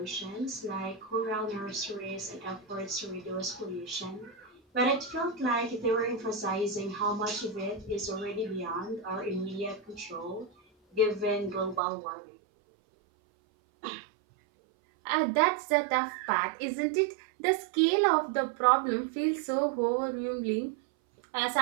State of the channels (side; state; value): left; drops out; at 11.8 s